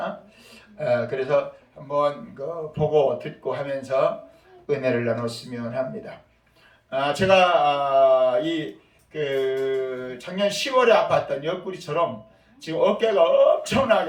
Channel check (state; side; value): identical; both; correlation 1.00